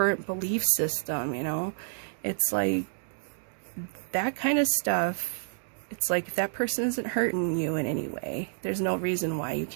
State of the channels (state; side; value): silent; left; digital silence